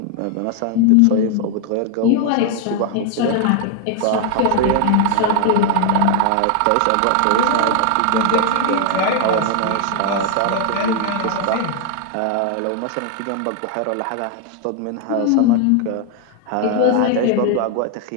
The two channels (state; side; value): different; both; correlation 0.00